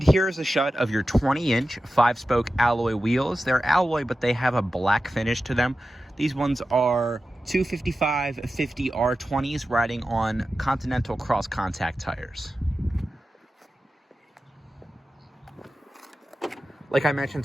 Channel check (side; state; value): both; normal; correlation 0.93